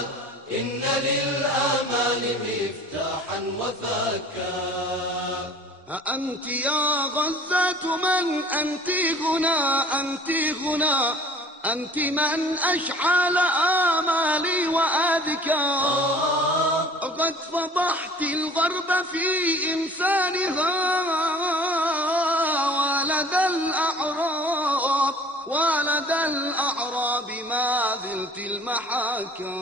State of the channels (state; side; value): normal; both; correlation 0.48